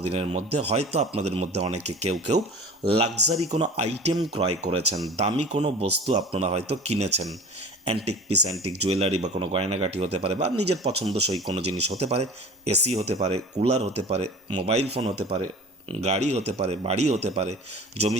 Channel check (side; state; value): both; normal; correlation 0.40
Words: দিনের মধ্যে হয়তো আপনাদের মধ্যে অনেকে কেউ লাক্সারি কোনো আইটেম ক্রয় করেছেন, দামি কোনো বস্তু আপনারা হয়তো কিনেছেন। অ্যান্টিক পিস, অ্যান্টিক জুয়েলারি বা কোনো গয়নাগাটি হতে পারে, বা নিজের পছন্দসই কোনো জিনিস হতে পারে। এসি হতে পারে, কুলার হতে পারে, মোবাইল ফোন হতে পারে, গাড়ি হতে পারে, বাড়ি হতে পারে, জমি